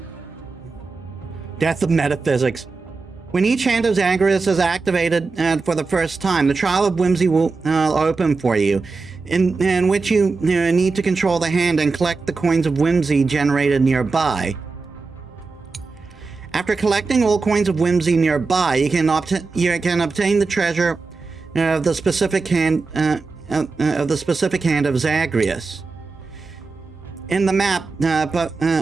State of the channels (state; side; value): quieter; left; 4.2 dB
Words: Death of Metaphysics. When each Hand of Zagreus is activated for the first time, the Trial of Whimsy will open for you, in which you need to control the hand and collect the coins of Whimsy generated nearby. After collecting all coins of Whimsy nearby, you can obtain the treasure of the specific hand of Zagreus. In the map,